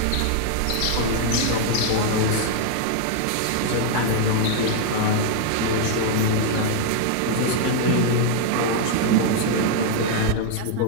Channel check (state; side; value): different; both; correlation 0.00